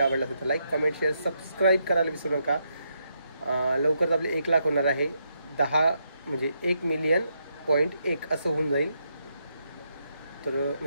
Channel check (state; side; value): inverted; both; correlation -0.79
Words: आवडला असेल तर लाईक, कमेंट, शेअर, सबस्क्राईब करायला विसरू नका. लवकरच आपले 1 लाख होणार आहे. 10 म्हणजे 1,000,000.1 असं होऊन जाईल. तर